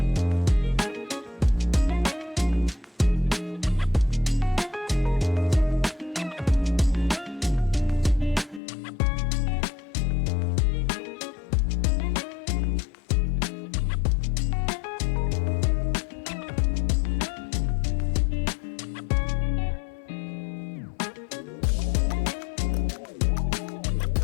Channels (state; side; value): drops out; right; at 8.6 s